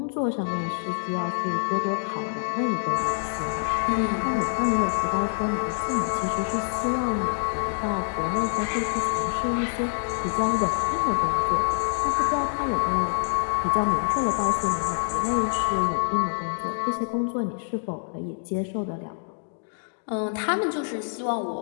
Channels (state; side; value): silent; right; digital silence